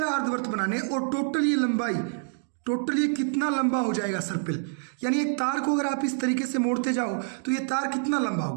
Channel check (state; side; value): silent; left; digital silence